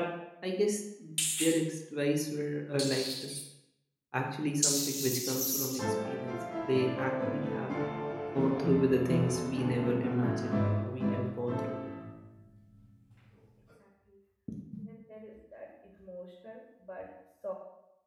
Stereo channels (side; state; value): both; identical; correlation 1.00